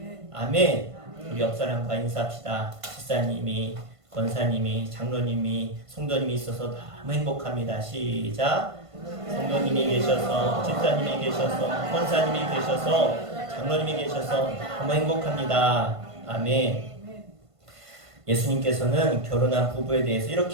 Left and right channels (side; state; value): left; late; 1.5 ms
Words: 아멘. 우리 옆 사람과 인사합시다. 집사님이, 권사님이, 장로님이, 성도님이 있어서 너무 행복합니다. 시작. 성도님이 계셔서, 집사님이 계셔서, 권사님이 계셔서, 장로님이 계셔서 너무 행복합니다. 아멘. 예수님께서는 결혼한 부부에 대해서